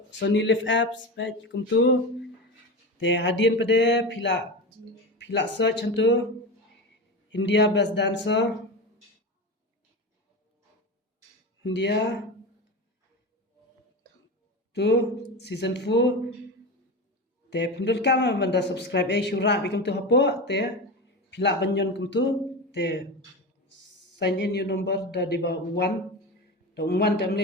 Sony Live apps baik kum tu hadian pada pila search tu India Best Dancer India tu season 4 pindul kam banda subscribe syura bikum tu hapo pila banyon kum tu sign in your number da di ba 1 tam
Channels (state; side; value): normal; both; correlation 0.24